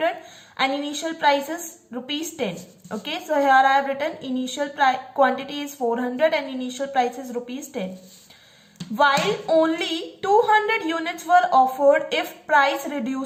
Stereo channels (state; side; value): identical; both; correlation 1.00